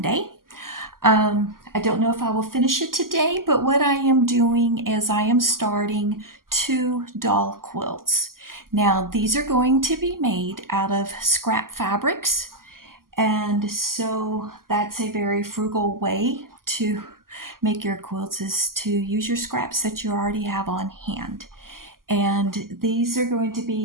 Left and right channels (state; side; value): late; left; 0.91 ms